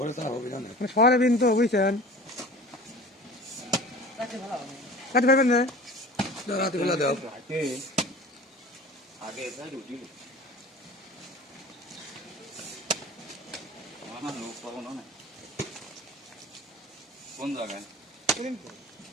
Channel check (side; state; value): both; normal; correlation 0.40